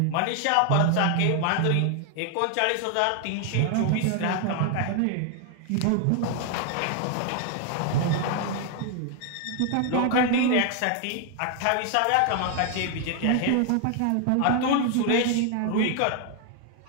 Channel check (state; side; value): different; both; correlation 0.00